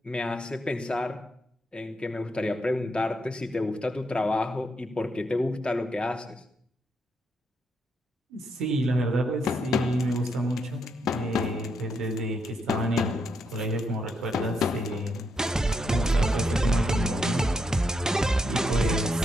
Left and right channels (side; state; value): both; normal; correlation 0.79